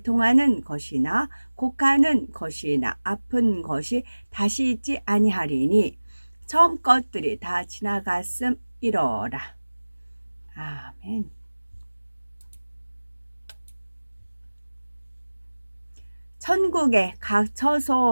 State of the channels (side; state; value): both; inverted; correlation -1.00